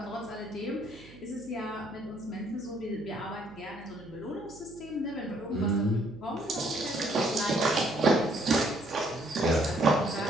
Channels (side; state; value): right; noise; hum, 20 dB below the sound